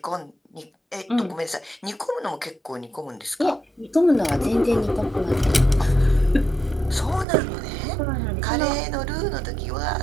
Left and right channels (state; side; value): drops out; left; at 7.2 s